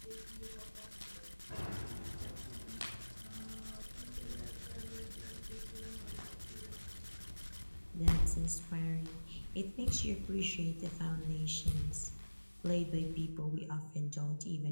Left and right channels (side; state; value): both; inverted; correlation -1.00